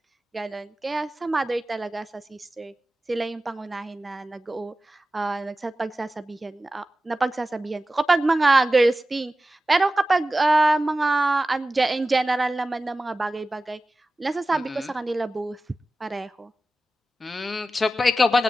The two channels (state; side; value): normal; both; correlation 0.95